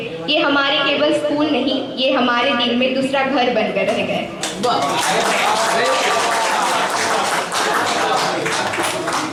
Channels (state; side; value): identical; both; correlation 1.00